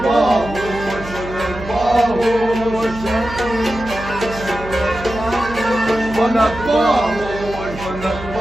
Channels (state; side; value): noise; right; hum, 12 dB below the sound